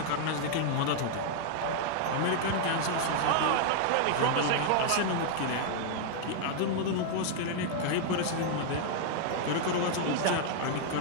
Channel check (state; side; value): different; both; correlation 0.00